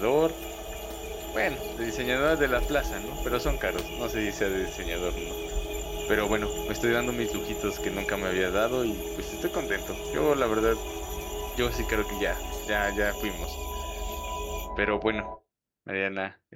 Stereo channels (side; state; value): both; identical; correlation 1.00